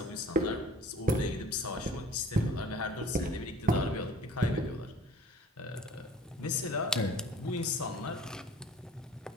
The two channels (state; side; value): normal; both; correlation 0.48